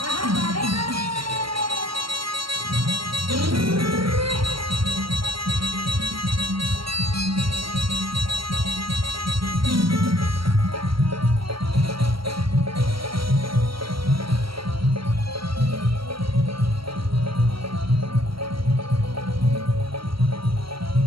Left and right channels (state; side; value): late; left; 0.74 ms